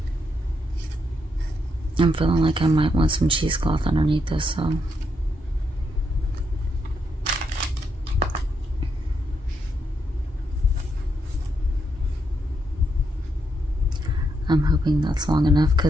I'm feeling like I might want some cheesecloth underneath this, so. I'm hoping that's long enough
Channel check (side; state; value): both; normal; correlation 0.79